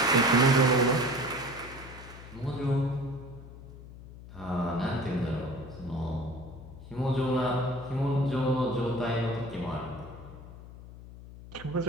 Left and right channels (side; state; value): left; noise; hum, 16 dB below the sound